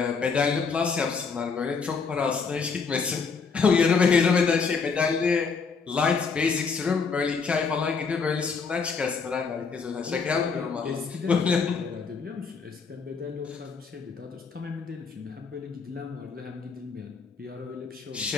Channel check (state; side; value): quieter; right; 5.2 dB